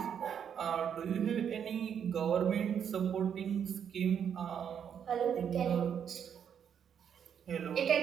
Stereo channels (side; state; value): left; quieter; 8.2 dB